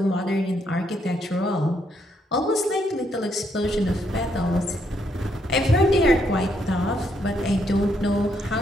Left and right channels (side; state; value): both; normal; correlation 0.74